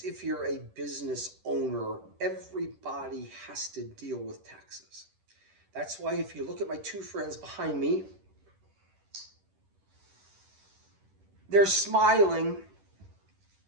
if you're a business owner, everybody has to deal with taxes. That's why if you look at my two friends behind me, they're smiling,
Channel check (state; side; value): late; left; 10 ms